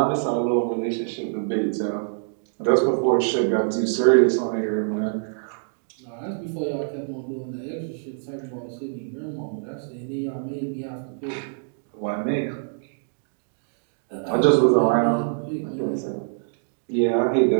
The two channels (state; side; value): silent; left; digital silence